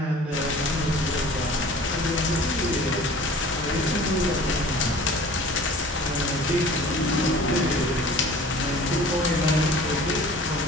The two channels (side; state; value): both; normal; correlation 0.45